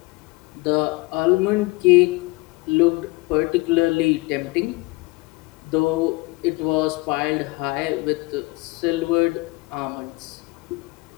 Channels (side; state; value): right; quieter; 24.0 dB